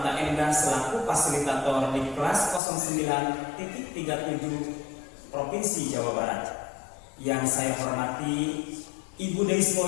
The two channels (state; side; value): drops out; right; at 2.6 s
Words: Endah selaku fasilitator di kelas 09.37 Provinsi Jawa Barat. Yang saya hormati Ibu Deis